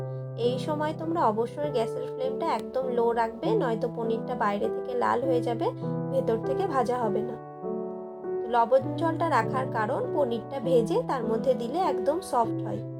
এই সময় তোমরা অবশ্যই গ্যাসের ফ্লেমটা একদম লো রাখবে, নয়তো পনিরটা বাইরে থেকে লাল হয়ে যাবে, ভেতর থেকে ভাজা হবে না। লবণ জলটা রাখার কারণ পনিরটা ভেজে তার মধ্যে দিলে একদম সফট হয়।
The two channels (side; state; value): both; identical; correlation 1.00